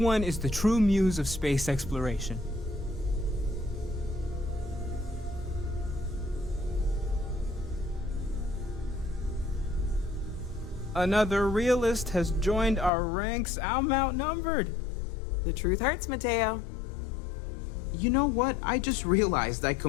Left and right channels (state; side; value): drops out; right; at 12.9 s